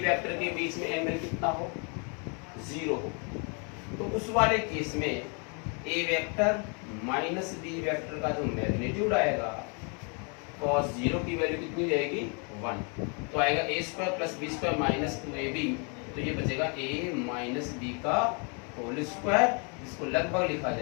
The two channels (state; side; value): quieter; right; 36.4 dB